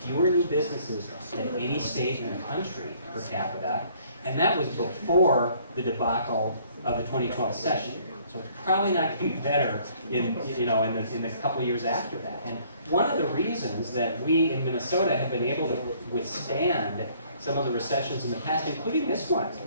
new businesses than any state in the country per capita, and that was before the debacle of the 2012 session. So it's probably not going to be better in the couple of years after that. And one of the reasons that we in Minnesota have been able to withstand some of the recessions in the past, including this one, I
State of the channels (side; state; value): both; inverted; correlation -0.60